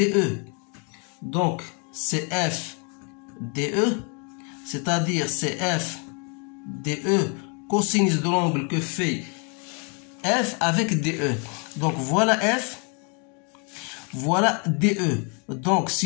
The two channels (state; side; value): quieter; right; 36.3 dB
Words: Donc c'est F DE, c'est-à-dire c'est F DE cosinus de l'angle que fait F avec DE. Donc voilà F, voilà DE. Donc